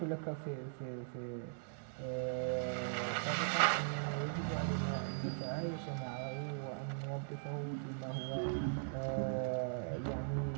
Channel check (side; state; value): left; silent; digital silence